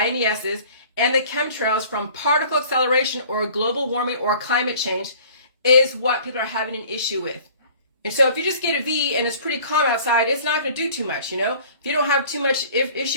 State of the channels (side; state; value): both; inverted; correlation -0.50